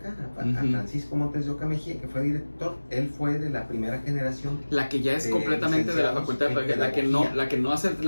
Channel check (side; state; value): both; inverted; correlation -1.00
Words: a Francisco Montes de Oca Mejía, que fue director. Él fue de la primera generación, la que ya es completamente de la facultad, la que no hace